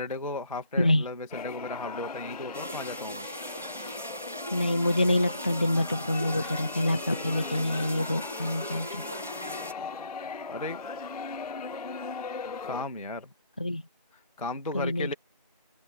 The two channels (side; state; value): both; inverted; correlation -0.74